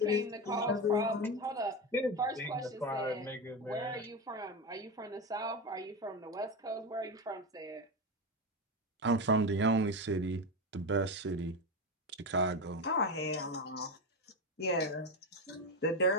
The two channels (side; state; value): both; normal; correlation 0.16